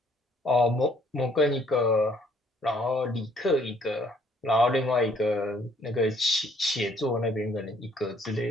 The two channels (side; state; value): both; normal; correlation 0.63